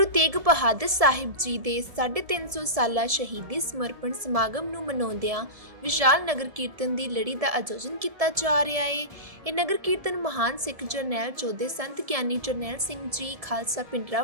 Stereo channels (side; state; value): left; late; 1.7 ms